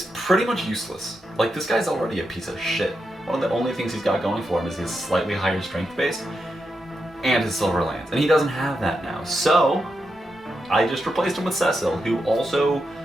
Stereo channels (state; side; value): normal; both; correlation 0.86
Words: pretty much useless. Like, this guy's already a piece of shit. One of the only things he's got going for him is his slightly higher strength base and his Silver Lance, and he doesn't have that now. So I just replaced him with Cecil, who also